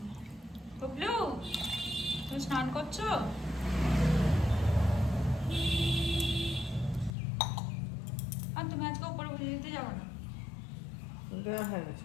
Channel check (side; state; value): right; drops out; at 7.1 s